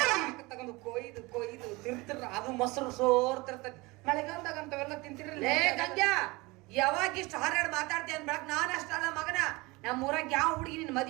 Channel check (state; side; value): quieter; left; 23.5 dB